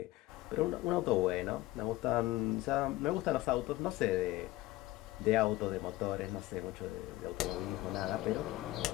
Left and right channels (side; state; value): right; quieter; 17.5 dB